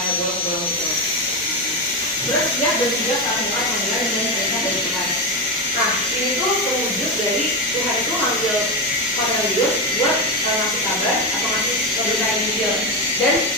bolong-bolong gitu. Terus dia bertiga melakukan panggilan dan perintah dari Tuhan. Nah ini tuh terwujud dari Tuhan itu manggil Cornelius buat ngasih kabar atau ngasih pemberitaan Injil. Dan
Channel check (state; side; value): normal; both; correlation 0.13